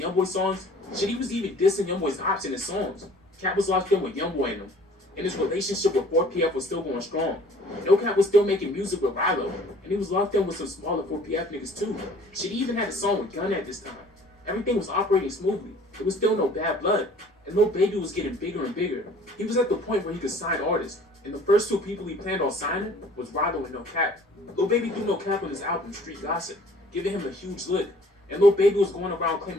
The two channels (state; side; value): normal; both; correlation 0.53